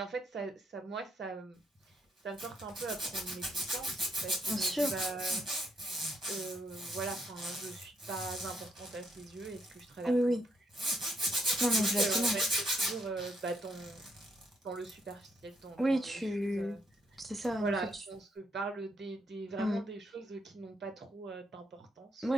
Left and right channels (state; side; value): normal; both; correlation 0.73